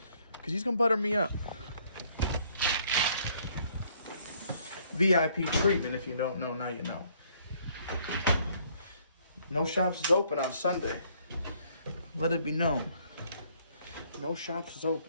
Cause he's gonna butter me up. VIP treatment, if you don't know, now you know. No shops is open on Sunday. Let it be known. No shops is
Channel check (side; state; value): both; inverted; correlation -0.64